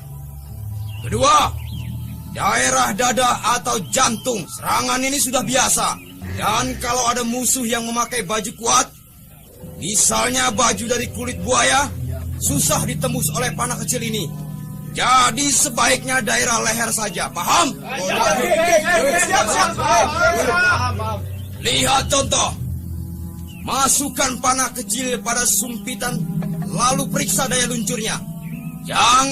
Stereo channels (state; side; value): identical; both; correlation 1.00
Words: Kedua, daerah dada atau jantung. Serangan ini sudah biasa. Dan kalau ada musuh yang memakai baju kuat, misalnya baju dari kulit buaya, susah ditembus oleh panah kecil ini. Jadi sebaiknya daerah leher saja, paham? Lihat contoh. Masukkan panah kecil pada sumpitan, lalu periksa daya luncurnya.